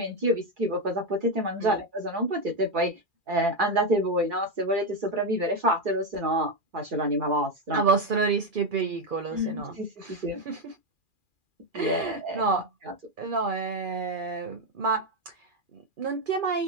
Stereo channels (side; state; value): left; late; 2.4 ms